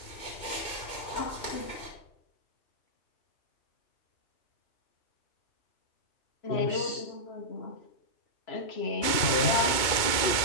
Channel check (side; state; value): right; late; 2.3 ms